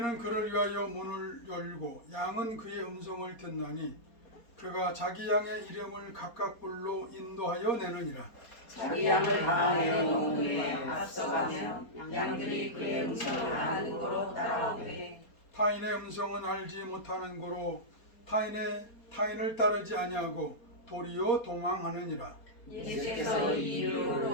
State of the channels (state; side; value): late; right; 4.3 ms